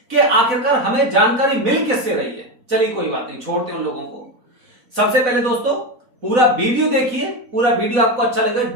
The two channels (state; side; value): late; left; 4.0 ms